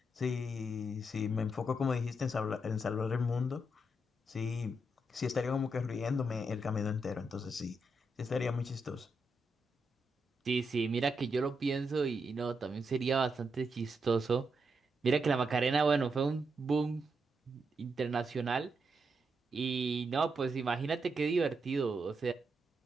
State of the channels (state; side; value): normal; both; correlation 0.82